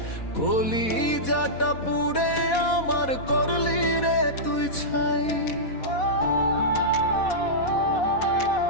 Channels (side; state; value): right; late; 4.1 ms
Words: কলিজাটা পুড়ে আমার করলি রে তুই ছাই।